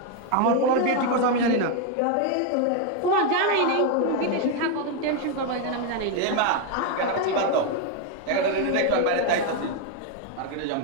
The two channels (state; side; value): different; both; correlation 0.01